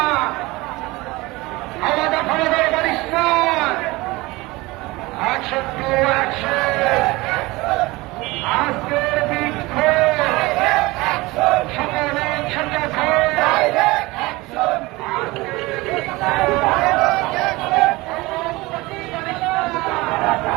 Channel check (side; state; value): left; quieter; 21.7 dB